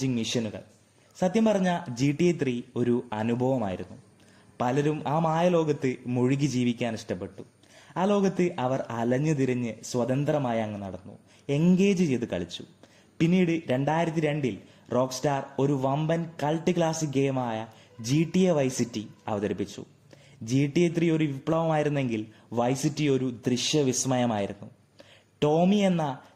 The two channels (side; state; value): both; identical; correlation 1.00